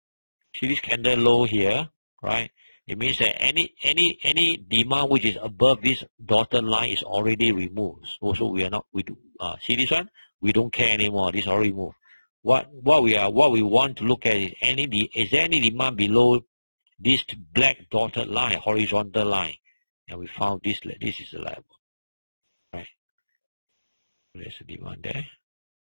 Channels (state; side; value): inverted; both; correlation -1.00